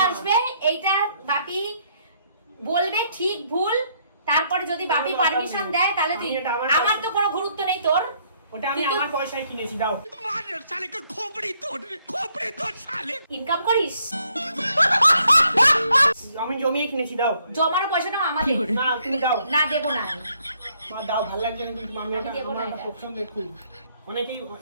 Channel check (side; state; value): both; inverted; correlation -0.69